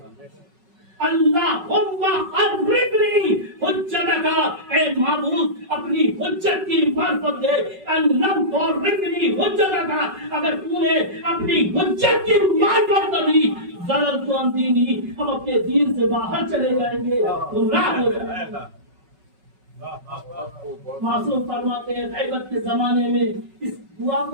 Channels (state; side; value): late; left; 5.3 ms